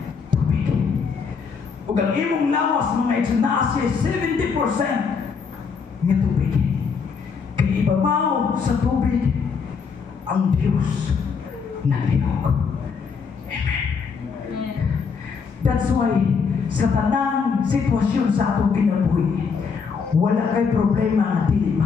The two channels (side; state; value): right; quieter; 5.7 dB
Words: tubig. Ug ang imong lawas mga igsoon, naa siya 70% nga tubig. Kaya ibabaw sa tubig ang Diyos naglihok. Amen. That's why sa tanang sitwasyon sa atong kinabuhi, wala kay problema nga dili